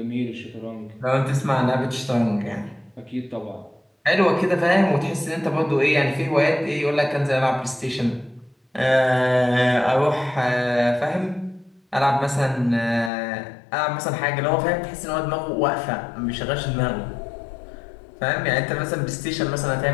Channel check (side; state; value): right; drops out; at 13.1 s